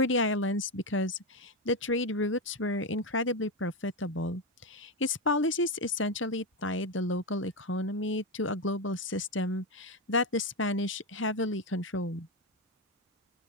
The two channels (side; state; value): both; normal; correlation 0.10